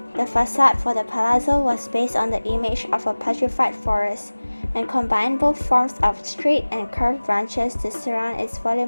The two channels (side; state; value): both; inverted; correlation -1.00